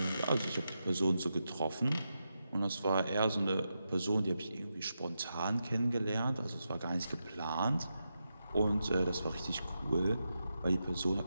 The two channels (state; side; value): inverted; both; correlation -0.87